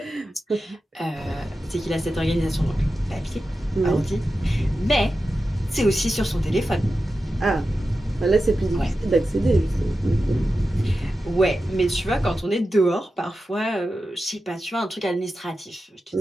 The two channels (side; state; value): both; normal; correlation 0.92